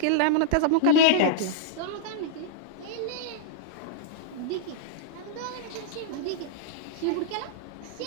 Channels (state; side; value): different; both; correlation -0.02